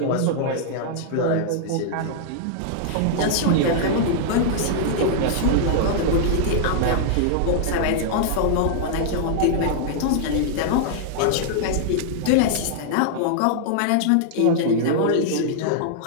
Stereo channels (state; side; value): different; both; correlation -0.01